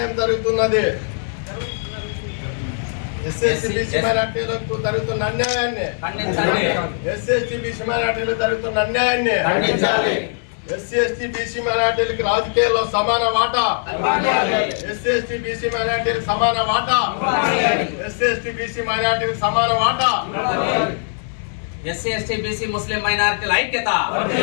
జరుగుతున్నది. ఎస్సీ బీసీ మైనార్టీలకు జరుగుతున్న అన్యాయాన్ని, ఎస్సీ బీసీ మైనార్టీలకు జరుగుతున్న అన్యాయాన్ని, ఎస్సీ బీసీ మైనార్టీలకు రాజకీయాల్లో సమాన వాటా, ఎస్సీ బీసీ మైనార్టీలకు సమాన వాటా, ఎస్సీ బీసీ మైనార్టీలకు సమాన వాటా, ఎస్సీ బీసీ ముస్లిం మైనారిటీల ఐక్యత,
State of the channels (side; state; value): right; silent; 58 dB below the other